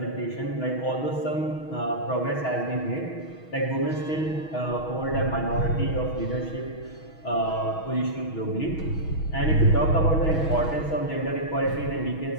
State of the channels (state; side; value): late; right; 6.3 ms